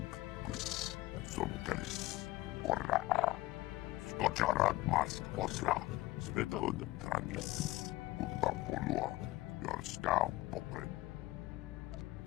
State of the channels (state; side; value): quieter; right; 18.0 dB